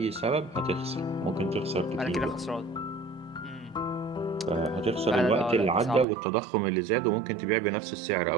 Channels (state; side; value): drops out; left; at 6.1 s